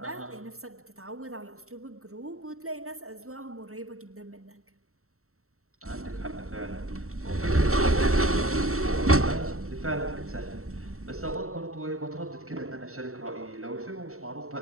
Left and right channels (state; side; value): late; left; 0.63 ms